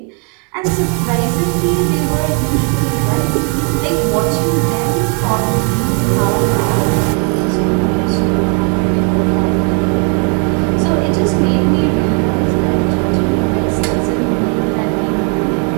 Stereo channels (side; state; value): left; quieter; 38.0 dB